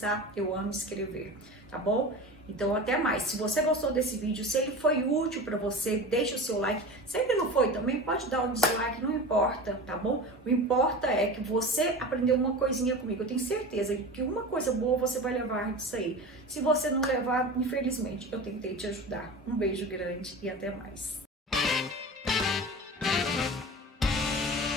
eu amo escrever, tá bom? Então, até mais. Se você gostou desse vídeo, se ele foi útil para você, deixa o seu like. Se ele não foi também, pode dar um dislike, não importa, tá bom? O importa é que você aprendeu uma coisinha comigo. Eu tenho certeza que uma coisa boa você vai levar disso aí. Se você não levar, infelizmente, eu tentei te ajudar. Um beijo grande e até mais.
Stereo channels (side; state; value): both; normal; correlation 0.32